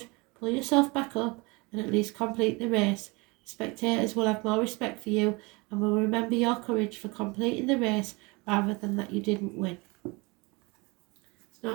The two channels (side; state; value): left; quieter; 26.4 dB